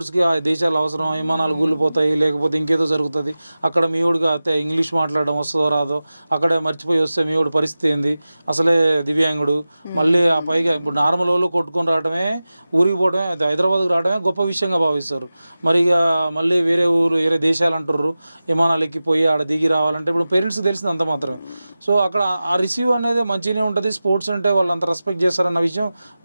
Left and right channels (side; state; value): both; inverted; correlation -0.95